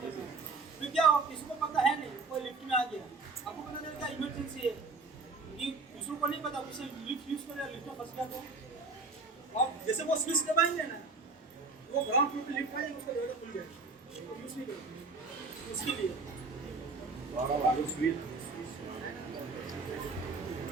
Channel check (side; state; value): left; quieter; 4.1 dB